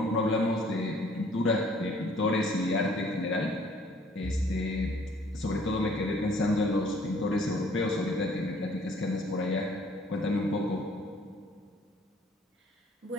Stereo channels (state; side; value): normal; both; correlation 0.58